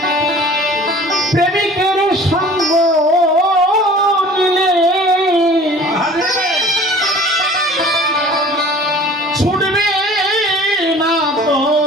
প্রেমিকের সঙ্গ নিলে ছুটবে না তো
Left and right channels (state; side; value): normal; both; correlation 0.46